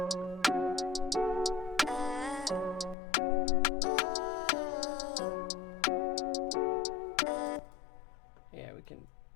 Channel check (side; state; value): right; drops out; at 3.0 s